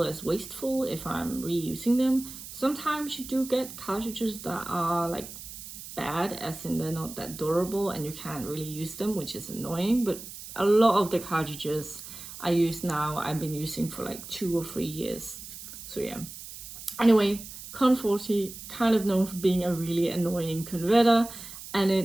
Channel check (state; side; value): noise; right; hiss, 13 dB below the sound